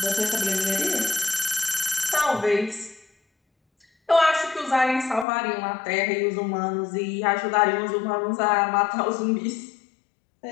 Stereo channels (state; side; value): drops out; right; at 5.2 s